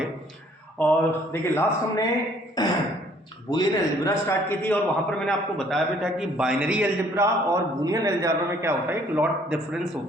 और देखिए लास्ट हमने बूलियन अलजेब्रा स्टार्ट की थी और वहाँ पर मैंने आपको बताया भी था कि बाइनरी अलजेब्रा और बूलियन अलजेब्रा में क्या होता है, एक लॉट डिफरेंस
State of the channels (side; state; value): both; normal; correlation 0.60